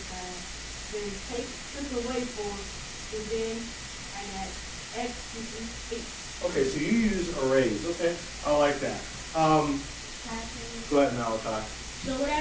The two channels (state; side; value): identical; both; correlation 1.00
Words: side, then took away 4, and then I got x equals 8. Okay, so you use arrays. Okay, I like that. Go ahead, Malachi. So what I